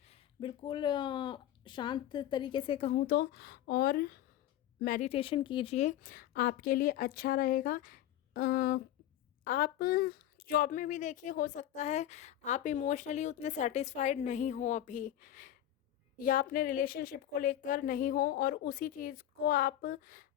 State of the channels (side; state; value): right; quieter; 12.2 dB